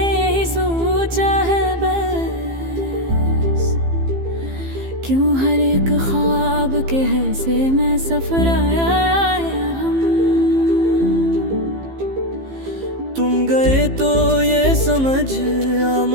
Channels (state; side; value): late; left; 15 ms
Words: यही सोचा है बस, क्यों हर एक ख्वाब के हिस्से में सफर आया है हम। तुम गए तो ये समझ आ